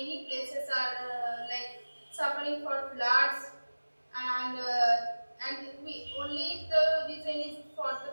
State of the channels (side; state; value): both; inverted; correlation -1.00